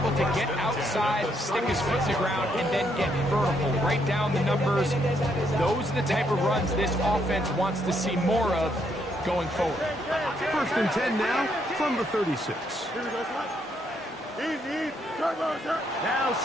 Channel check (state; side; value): normal; both; correlation 0.74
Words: to get outside, stick his foot to the ground, and then get vertical. Right down the numbers. Those are the type of runs this offense wants to see more of going forward. 1st and 10 now from the 36. Here we go, son. Easy. Turbo, sir. Now